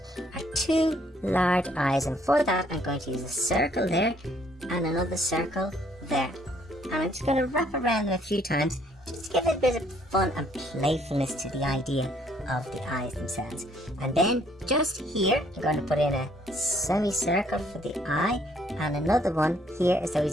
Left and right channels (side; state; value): both; normal; correlation 0.65